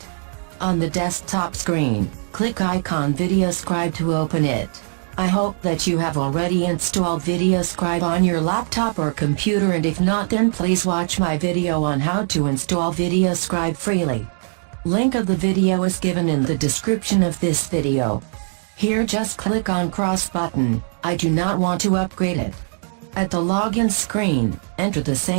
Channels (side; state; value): left; silent; digital silence